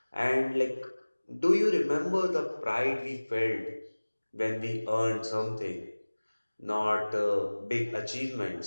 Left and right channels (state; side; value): inverted; both; correlation -1.00